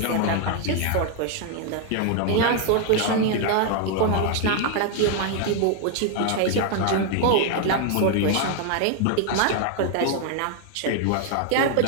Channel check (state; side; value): different; both; correlation 0.00